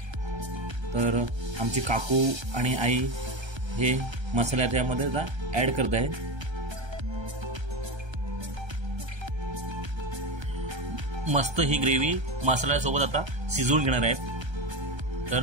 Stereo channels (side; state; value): left; late; 1.3 ms